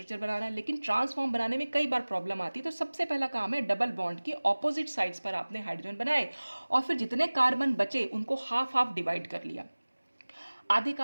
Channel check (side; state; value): both; inverted; correlation -1.00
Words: बनाना है, लेकिन ट्रांसफॉर्म बनाने में कई बार प्रॉब्लम आती है। तो सबसे पहला काम है डबल बॉन्ड के ऑपोजिट साइड्स पर आपने हाइड्रोजन बनाए और फिर जितने कार्बन बचे उनको हाफ हाफ डिवाइड कर लिया, आधे